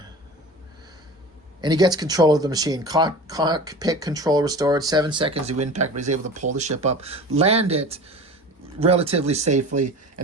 And he gets control of the machine. Cockpit control restored. 7 seconds to impact, but he's able to pull the ship up, land it relatively safely.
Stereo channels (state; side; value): normal; both; correlation 0.36